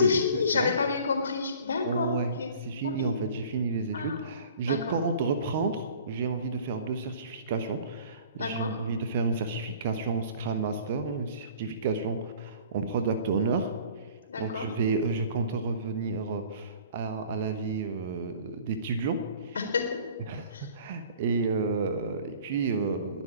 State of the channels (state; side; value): inverted; both; correlation -0.48